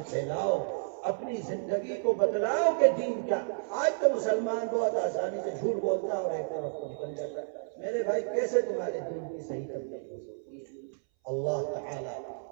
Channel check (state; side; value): silent; left; 57 dB below the other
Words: پھیلاؤ، اپنی زندگی کو بتلاؤ کہ دین کیا۔ آج تو مسلمان بہت آسانی سے جھوٹ بولتا ہے اور ایک طرف کو نکل جاتا ہے، میرے بھائی کیسے تمہارے دین کی صحیح تبلیغ ہو سکتی ہے؟ اللہ تعالی